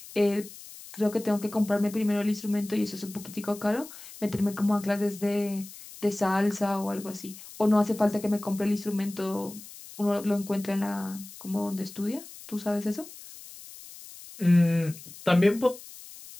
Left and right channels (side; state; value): left; noise; hiss, 16 dB below the sound